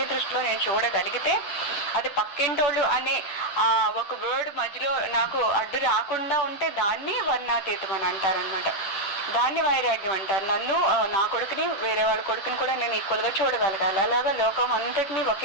దృష్టిలో నేను చూడగలిగితే, అది పక్కింటోళ్ళు అనే ఒక వర్డ్ మధ్యలో నాకు అడ్డు రాకుండా ఉంటే దాన్ని వర్ణాతీతం అని అంటారనమాట. దాన్ని వైరాగ్యం అంటారు. నన్ను, నా కొడుకుని, వేరే వాళ్ళ కొడుకుని కూడా నేను ఈక్వల్గా చూడగలగాలి. అలాగా లోకం అంతటినీ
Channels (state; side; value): late; right; 10 ms